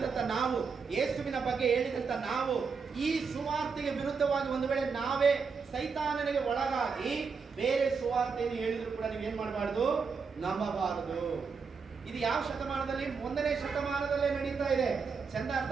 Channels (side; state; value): left; quieter; 5.4 dB